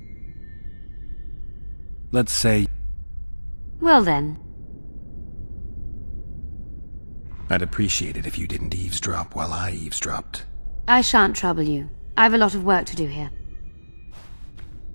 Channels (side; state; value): both; inverted; correlation -1.00